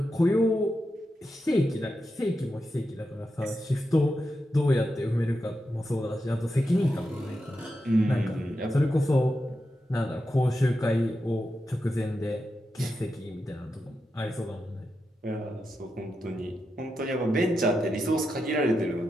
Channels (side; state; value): both; normal; correlation 0.88